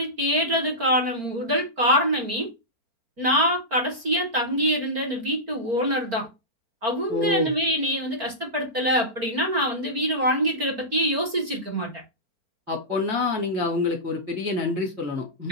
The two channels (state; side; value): late; left; 4.4 ms